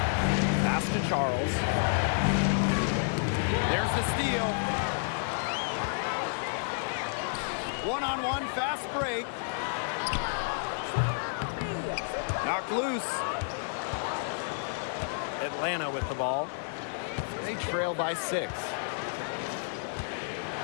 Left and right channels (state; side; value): silent; right; 57 dB below the other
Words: Pass to Charles. There's the steal. One-on-one fast break. Knocked loose. Atlanta with the ball. They trail by 6.